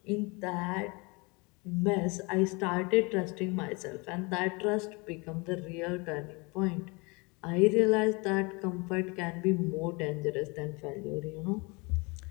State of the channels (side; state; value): right; quieter; 28.2 dB